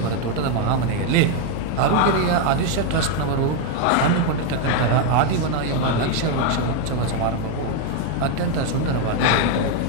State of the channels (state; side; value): different; both; correlation 0.01